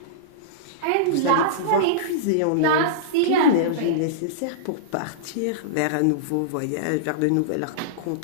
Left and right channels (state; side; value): different; both; correlation -0.03